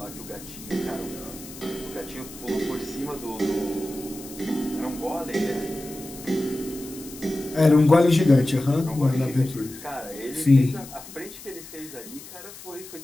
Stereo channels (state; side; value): noise; left; hiss, 16 dB below the sound